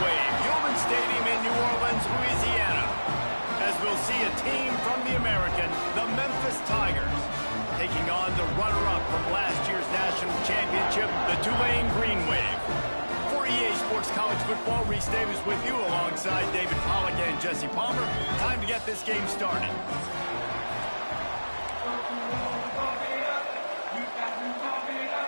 Wave, Human Stadium in New Orleans, Louisiana. As we'll see a team from the American, the Memphis Tigers, taking on the runner-up from last year's national championship, the Tulane Green Wave. For EA Sports College Football, Reese Davis with you alongside David Pollack and Jesse Palmer. Time to get this game started.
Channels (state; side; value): inverted; both; correlation -1.00